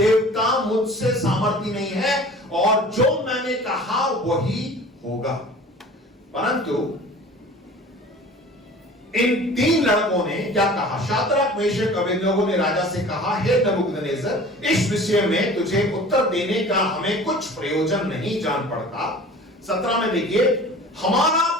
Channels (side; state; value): both; normal; correlation 0.43